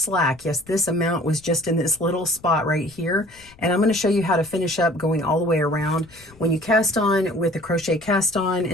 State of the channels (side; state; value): left; noise; rumble, 26 dB below the sound